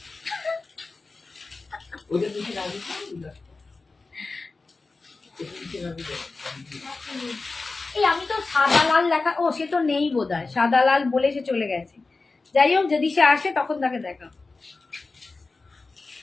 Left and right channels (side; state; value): right; quieter; 3.8 dB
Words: এই আমি তো সাদা লাল লেখা, ও সে তো নেই বোধহয়, সাদা লাল বলে সে চলে গেছে। যাই হোক, যদি সে আসে তখন তাকে দেখা।